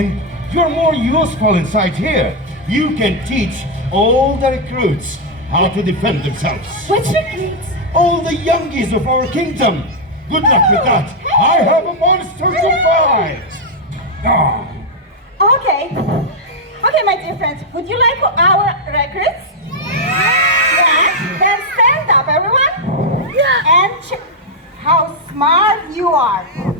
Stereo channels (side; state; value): both; normal; correlation -0.01